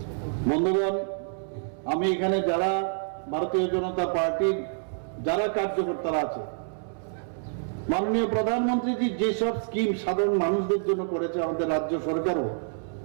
বন্ধুগণ, আমি এখানে যারা ভারতীয় জনতা পার্টির যারা কার্যকর্তারা আছে, মাননীয় প্রধানমন্ত্রীজি যেসব স্কিম সাধারণ মানুষদের জন্য করেছে, আমাদের রাজ্য সরকারও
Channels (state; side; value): silent; left; 60 dB below the other